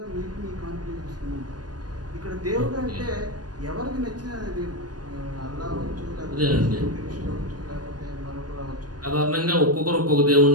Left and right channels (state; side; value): late; left; 0.69 ms